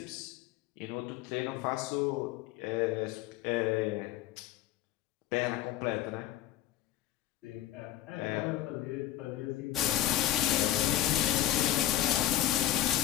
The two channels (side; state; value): right; quieter; 13.1 dB